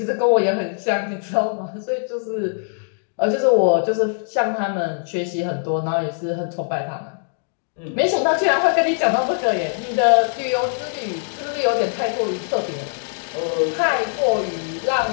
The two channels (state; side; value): silent; right; digital silence